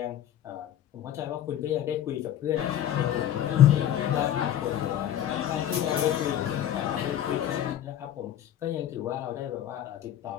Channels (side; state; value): right; quieter; 11.1 dB